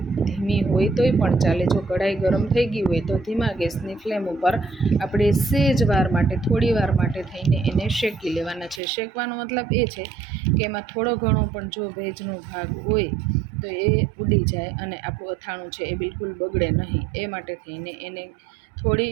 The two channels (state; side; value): drops out; left; at 8.8 s